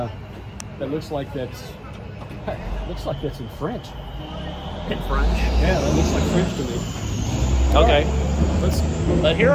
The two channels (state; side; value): identical; both; correlation 1.00